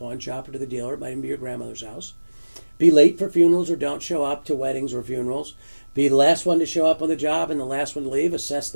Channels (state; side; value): inverted; both; correlation -1.00